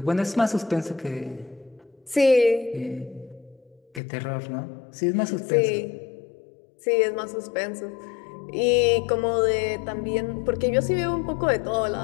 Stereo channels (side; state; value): right; drops out; at 4.0 s